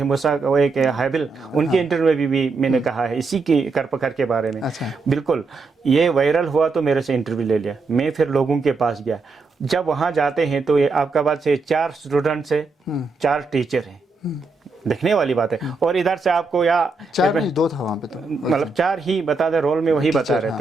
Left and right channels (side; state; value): left; quieter; 4.0 dB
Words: मूसा, वो एक हाबिल, उनके इंटरव्यू में भी मैंने कहा है इसी की करपकर के बारे में। बिल्कुल, ये वायरल हुआ तो मेरे से इंटरव्यू ले लिया। मैं फिर लोगों के पास गया। जब वहाँ जाते हैं तो ये आपका बात से 4 स्टूडेंट्स है, 4 टीचर हैं, देखने वाली बात है। और इधर से आपको या 4 नहीं 2 था वहाँ पे, तो मतलब 4 ही बता दे, रोल में वही बता रहे